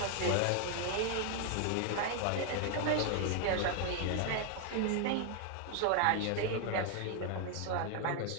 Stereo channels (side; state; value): both; different; correlation 0.01